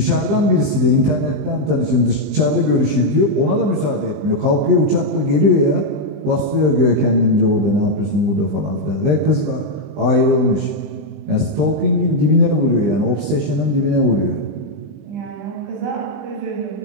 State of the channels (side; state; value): left; late; 20 ms